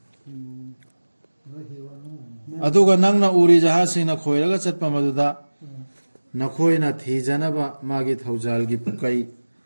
अदुगा नंगना उरी जहासिना खोइरगा चटपा मदुदा नखोइना थीजनबा मागी थौजाल की पुकई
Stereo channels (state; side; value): inverted; both; correlation -1.00